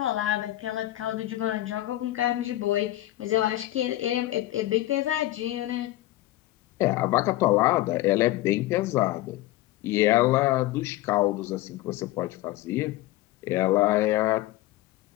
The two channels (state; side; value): quieter; right; 16.2 dB